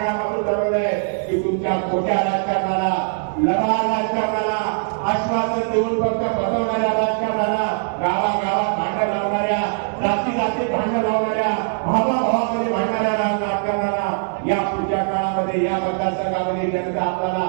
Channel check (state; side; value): silent; left; digital silence